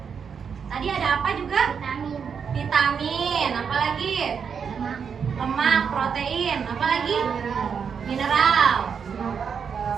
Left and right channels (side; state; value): left; quieter; 6.6 dB